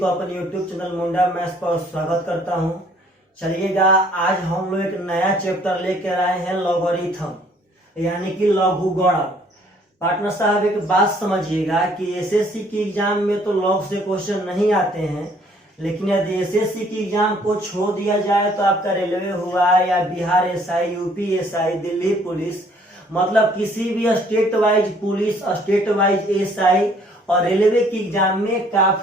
अपने YouTube चैनल मुंडा मैथ्स पर स्वागत करता हूं। चलिएगा, आज हम लोग एक नया चैप्टर लेकर आए हैं लॉगरिथम यानी कि लघुगणक। पार्टनर साहब एक बात समझिएगा कि एसएससी की एग्जाम में तो लॉग से क्वेश्चन नहीं आते हैं, लेकिन यदि एसएससी की एग्जाम को छोड़ दिया जाए तो आपका रेलवे हुआ या Bihar SI, UP SI, Delhi police, मतलब किसी भी state wise police, state wise SI और रेलवे की एग्जाम में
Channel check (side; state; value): both; normal; correlation 0.60